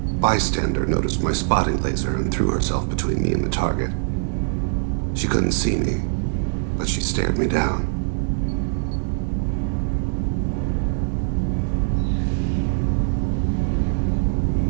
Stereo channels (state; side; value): silent; left; digital silence